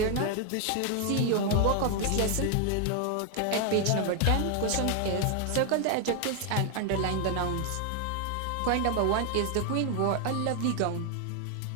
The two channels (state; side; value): different; both; correlation 0.00